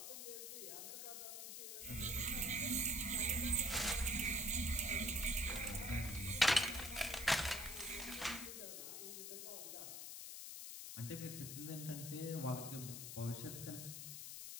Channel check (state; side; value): noise; left; hiss, 7 dB below the sound